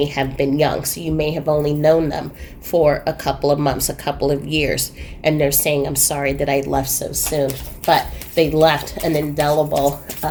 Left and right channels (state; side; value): identical; both; correlation 1.00